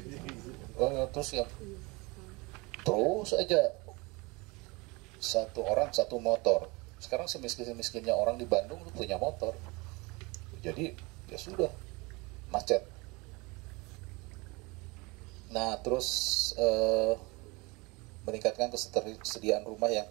Terus aja satu orang satu motor. Sekarang semiskin-miskinnya orang di Bandung punya motor. Jadi ya sudah macet. Nah terus meningkatkan ketersediaan rumah yang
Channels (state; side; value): quieter; left; 25.7 dB